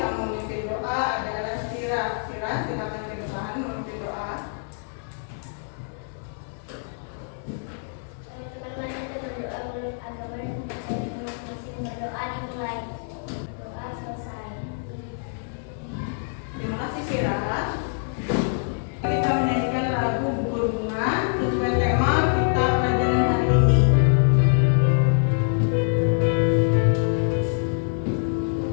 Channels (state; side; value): silent; right; 61 dB below the other